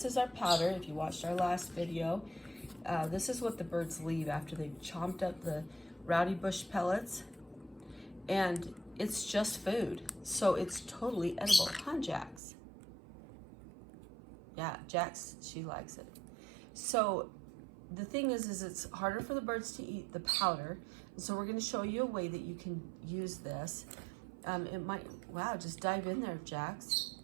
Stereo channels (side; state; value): left; drops out; at 12.4 s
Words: is our powder. If you watched our last video, this is what the birds leave after they've chomped up the Roudybush pellets. And it's just food, so it's totally edible. Huh, Jax? Yeah, Jax, she likes it. So the thing is it's harder for the birds to eat the powder. So we're going to show you a way that you can use this. It might, wow, just dive in there, Jax.